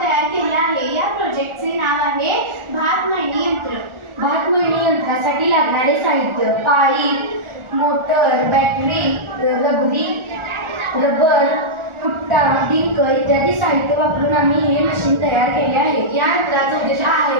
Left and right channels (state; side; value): late; left; 1.4 ms